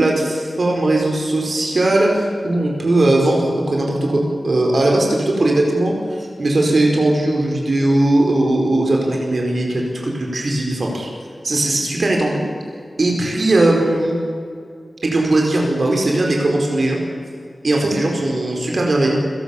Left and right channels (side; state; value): both; normal; correlation 0.95